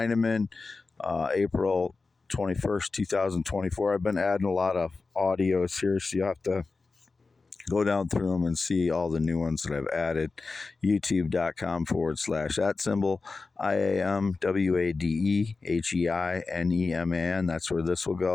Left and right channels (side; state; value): right; quieter; 4.0 dB